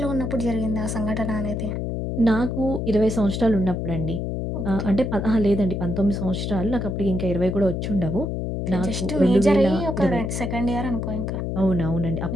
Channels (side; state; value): left; noise; hum, 2 dB below the sound